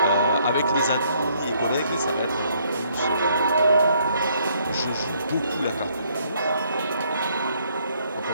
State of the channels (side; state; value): both; inverted; correlation -0.68